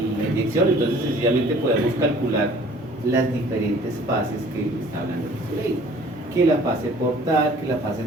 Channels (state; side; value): normal; both; correlation 0.52